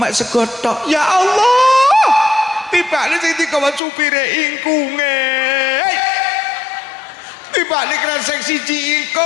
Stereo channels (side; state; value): right; drops out; at 3.8 s